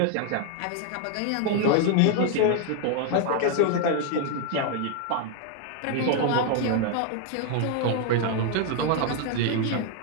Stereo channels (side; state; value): both; different; correlation 0.00